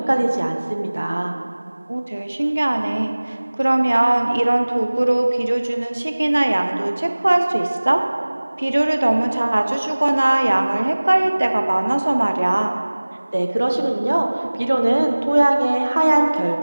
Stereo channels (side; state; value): both; inverted; correlation -1.00